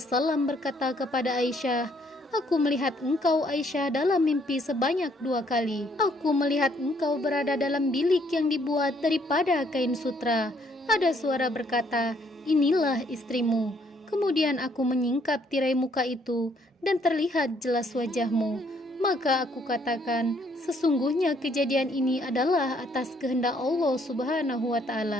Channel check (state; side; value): normal; both; correlation 0.67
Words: berkata kepada Aisyah, "Aku melihat engkau Aisyah dalam mimpi sebanyak 2 kali. Aku melihat engkau berada dalam bilik yang dibuat daripada kain sutra. Ada suara berkata, inilah istrimu. Kemudian aku menyingkap tirai muka itu dan terlihat jelas wajahmu. Maka aku katakan, sesungguhnya kejadian ini adalah atas kehendak Allah Subhanahu wa